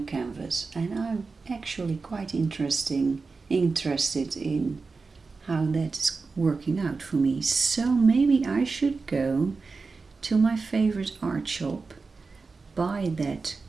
canvas, and I'm actually quite interested in how that's working out for me. So maybe I should go to my favorite art shop, buy that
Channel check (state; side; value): quieter; left; 4.3 dB